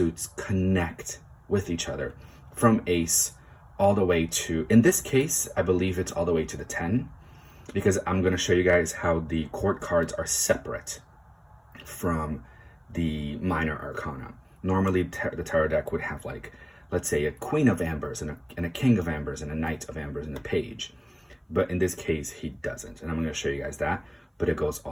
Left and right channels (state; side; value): identical; both; correlation 1.00